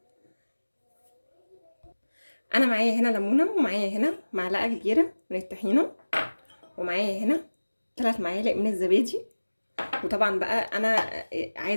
انا معايا هنا ليمونه، ومعايا هنا معلقه كبيره من الطحينه، ومعايا هنا 3 معالق من الزبادي. وطبعا بقى انا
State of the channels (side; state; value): both; inverted; correlation -1.00